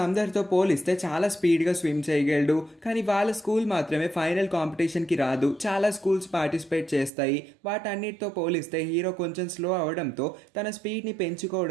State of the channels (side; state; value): left; drops out; at 7.1 s